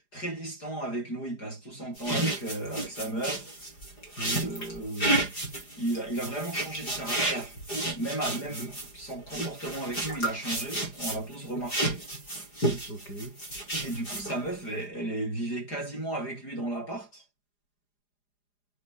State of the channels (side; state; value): right; late; 4.9 ms